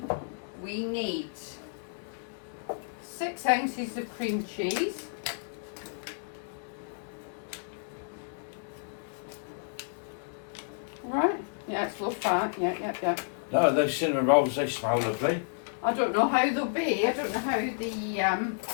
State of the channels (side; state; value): right; silent; digital silence